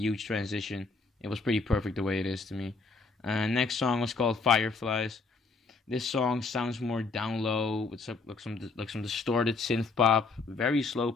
transition. It was pretty perfect the way it is to me. Next song was called Fireflies. This song sounds more down low with some distorted synth pop, very slow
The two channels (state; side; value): quieter; right; 4.1 dB